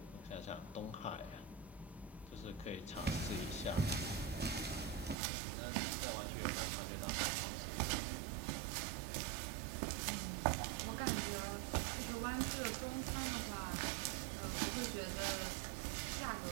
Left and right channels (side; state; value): left; drops out; at 5.2 s